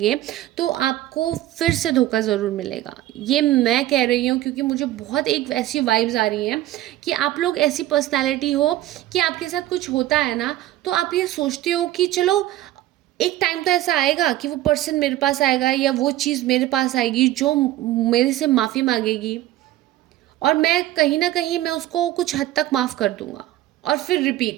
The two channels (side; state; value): left; quieter; 14.8 dB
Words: तो आपको फिर से धोखा ज़रूर मिलेगा। ये मैं कह रही हूँ क्योंकि मुझे बहुत एक ऐसी वाइब्स आ रही हैं कि आप लोग ऐसी पर्सनालिटी हो कि आपके साथ कुछ होता है ना, तो आप ये सोचते हो कि चलो एक टाइम तो ऐसा आएगा कि वो पर्सन मेरे पास आएगा या वो चीज़ मेरे पास आएगी जो मेरे से माफ़ी मांगेगी, और मैं कहीं ना कहीं मैं उसको कुछ हद तक माफ़ कर दूंगा, और फिर